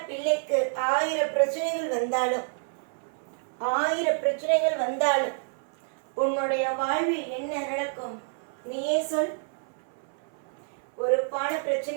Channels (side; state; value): left; silent; 59 dB below the other